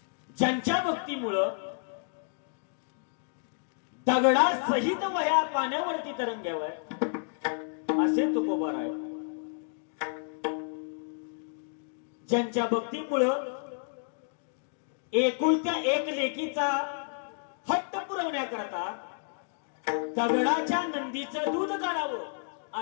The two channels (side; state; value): right; silent; digital silence